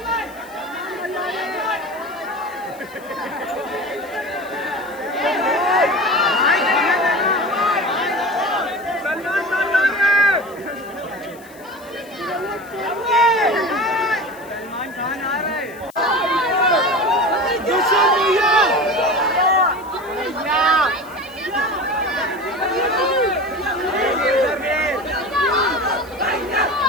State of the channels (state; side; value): noise; left; hiss, 24 dB below the sound